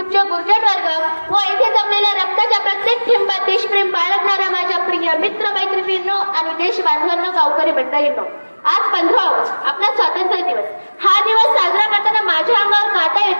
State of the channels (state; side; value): inverted; both; correlation -1.00